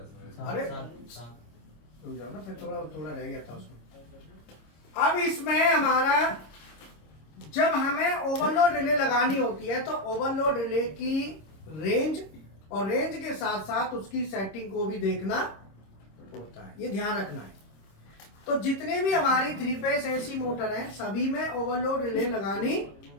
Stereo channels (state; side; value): late; right; 26 ms